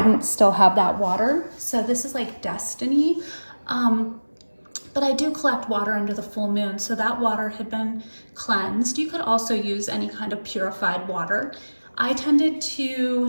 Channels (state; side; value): inverted; both; correlation -1.00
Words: still have that water, so this is like destiny. But I do collect water under the full moon, so that water had been cleansed. You could also use any kind of purified water. I tended